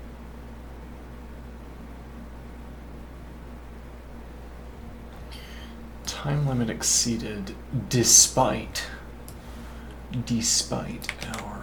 Time limit exceeded despite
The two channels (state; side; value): identical; both; correlation 1.00